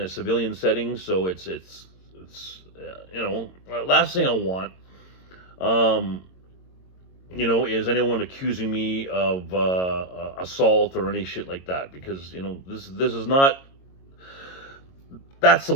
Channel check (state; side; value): late; right; 22 ms